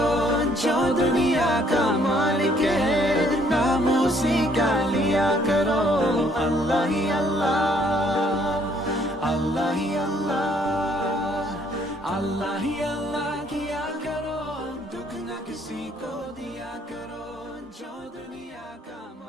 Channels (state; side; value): normal; both; correlation 0.65